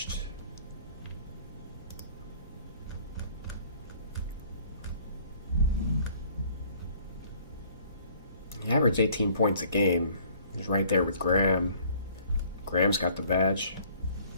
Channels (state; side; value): inverted; both; correlation -0.57